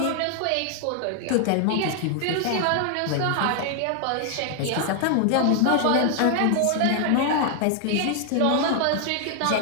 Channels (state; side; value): different; both; correlation 0.00